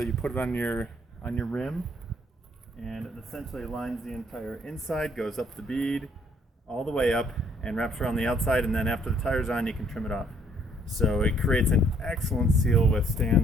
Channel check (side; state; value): both; normal; correlation 0.65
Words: you put it on your rim, and it essentially lines the entire inside, goes up the bead all the way up and wraps around the outside, and then after the tire's on you can trim it off. So it creates an excellent seal